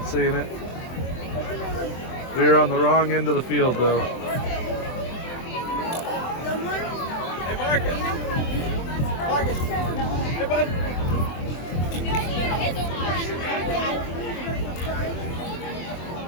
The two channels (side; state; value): right; late; 24 ms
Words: seeing it. We were on the wrong end of the field, though. Hey, Marcus. Marcus. Hey, bud.